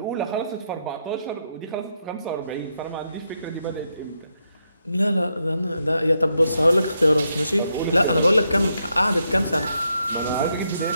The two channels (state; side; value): inverted; both; correlation -0.81